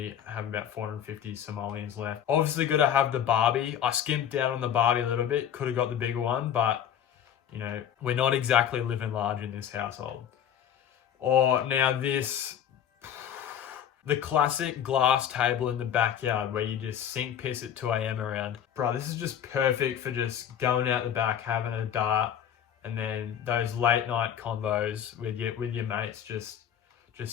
have about 450 simoleons left. Obviously got to have the Barbie. I skimped down on the Barbie a little bit. Could have got the bigger one, but you know, we're not exactly living large in this household. Or now this, the classic glass table in the backyard where you just sink piss at 2 a.m. around. Bro, this is just perfect for just going out the back, having a dart, and then those late night convos with your mates, just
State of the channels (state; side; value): quieter; right; 9.4 dB